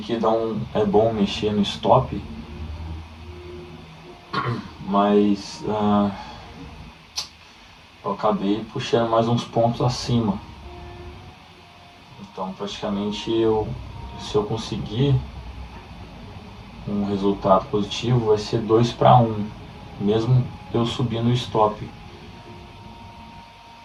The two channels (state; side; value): identical; both; correlation 1.00